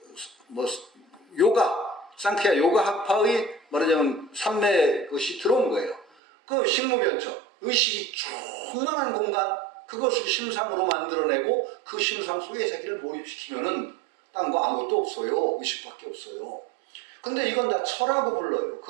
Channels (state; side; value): drops out; left; at 6.1 s